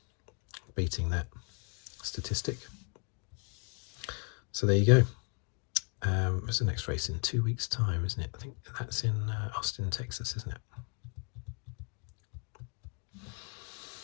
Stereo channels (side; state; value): right; quieter; 37.0 dB